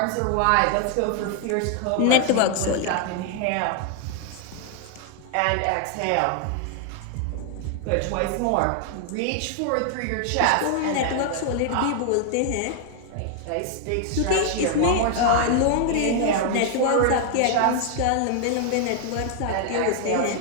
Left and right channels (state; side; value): different; both; correlation 0.00